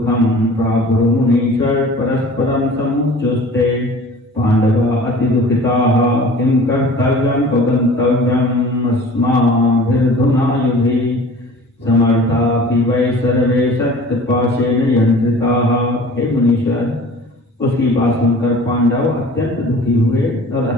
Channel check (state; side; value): normal; both; correlation 0.44